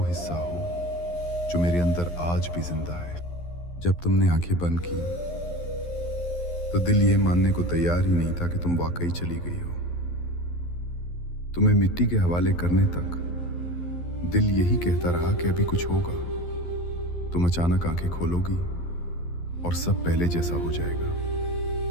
हिस्सा हो जो मेरे अंदर आज भी जिंदा है। जब तुमने आंखें बंद की तो दिल ये मानने को तैयार ही नहीं था कि तुम वाकई चली गई हो। तुम्हें मिट्टी के हवाले करने तक दिल यही कहता रहा कि अभी कुछ होगा। तुम अचानक आंखें खोलोगी और सब पहले जैसा हो जाएगा।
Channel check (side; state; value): right; late; 12 ms